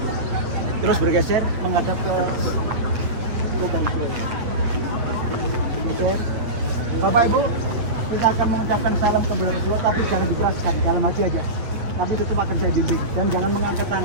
Terus bergeser menghadap ke lubang sini. Bapak Ibu, kita akan mengucapkan salam ke beliau Rasulullah, tapi jangan dikeraskan, dalam hati aja. Tapi tetap akan saya bimbing dan jangan mengangkat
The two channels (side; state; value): left; late; 8.7 ms